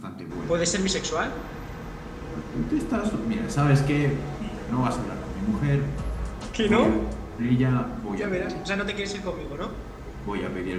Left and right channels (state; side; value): identical; both; correlation 1.00